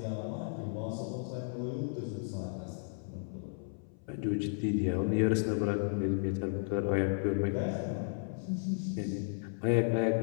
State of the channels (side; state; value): right; silent; 55 dB below the other